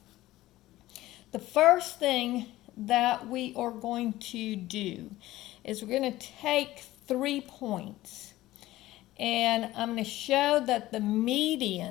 the first thing that we are going to do is we're going to take 3 points, and I'm going to show that the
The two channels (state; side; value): quieter; right; 16.4 dB